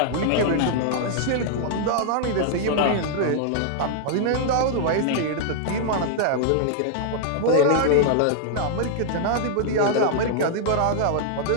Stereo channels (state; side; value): different; both; correlation -0.01